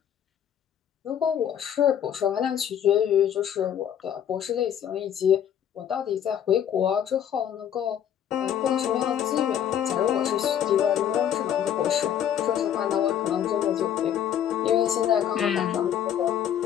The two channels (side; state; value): right; quieter; 9.6 dB